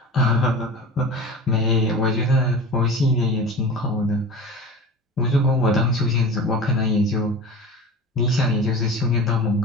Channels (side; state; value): both; normal; correlation 0.34